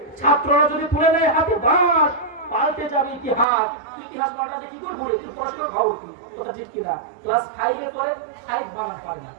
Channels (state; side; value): drops out; left; at 3.5 s